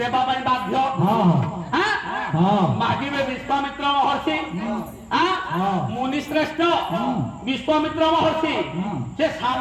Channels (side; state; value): both; identical; correlation 1.00